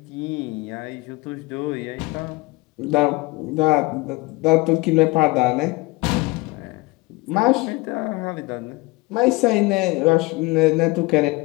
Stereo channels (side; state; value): right; quieter; 23.3 dB